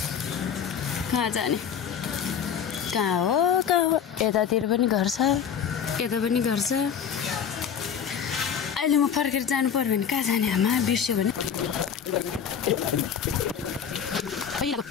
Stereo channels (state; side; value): quieter; right; 7.9 dB